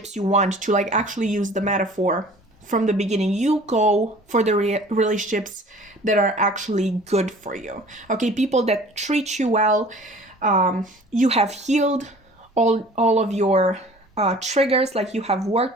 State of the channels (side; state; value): both; normal; correlation 0.48